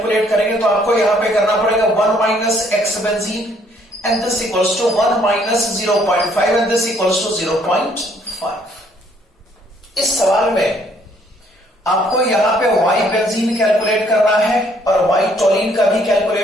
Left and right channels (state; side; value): normal; both; correlation 0.65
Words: करेंगे तो आपको यहां पे करना पड़ेगा 1 minus x benzene and this equals to 1 minus 0.5 and this equals to 0.5। इस सवाल में आपको यहां पे y बेंजीन कैलकुलेट करना है और y टोलिन का भी